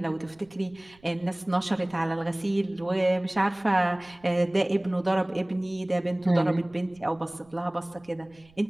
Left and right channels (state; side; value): noise; right; rumble, 29 dB below the sound